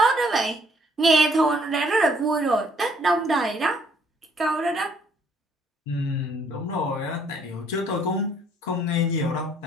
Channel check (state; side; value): normal; both; correlation 0.64